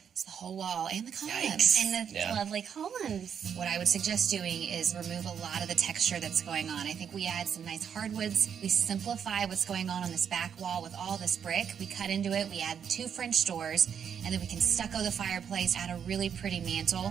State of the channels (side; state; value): left; quieter; 7.9 dB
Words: It's the whole wall and the columns. Yikes. And the lovely columns. What I would suggest doing is remove a lot of the texture that's going on. I think we add some nice hardwoods. We simplify what's going on this back wall with all this brick. We cut into it. We add 2 French doors, and then we can stucco the fireplace, add a really pretty